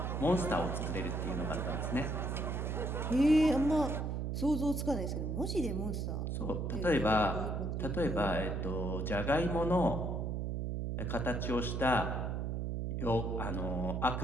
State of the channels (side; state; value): right; noise; hum, 1 dB below the sound